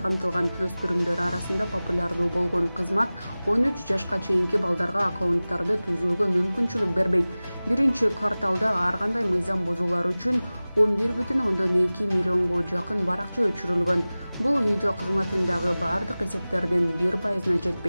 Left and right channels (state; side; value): inverted; both; correlation -0.98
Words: камтылган. Өспүрүмдөр арасында популярдуу болгон кызмат 13 жашка чейинки балдарга аккаунттарды түзүүгө мүмкүнчүлүк бербейт. 1-кварталда ар кандай мыйзам бузуулар үчүн 11,2 миллионго жакын баракча өчүрүлгөн. Бул видео кызматындагы бардык эсептердин 1%-на